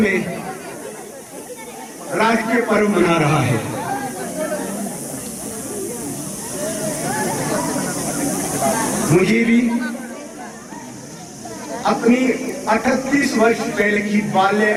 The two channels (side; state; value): both; identical; correlation 1.00